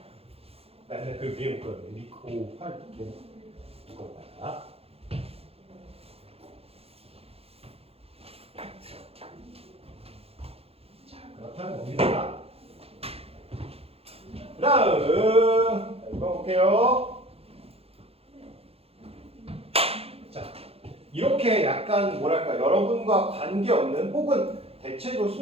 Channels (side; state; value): left; late; 0.29 ms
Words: 나 옛날에 그 위에 못 그렸는데 리코 활 이거 봐라. 자, 그렇다는 겁니다. 다음 이거 볼게요. 자, 이렇게 약간 뭐랄까 여러분과 관계없는 혹은 대체로